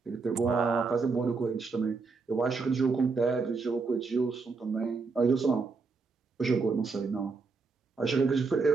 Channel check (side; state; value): left; quieter; 4.4 dB